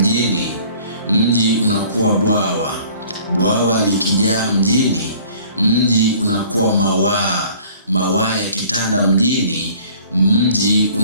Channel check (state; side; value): inverted; both; correlation -0.52